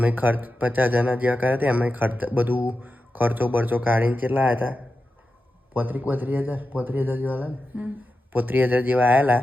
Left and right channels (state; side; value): normal; both; correlation 0.91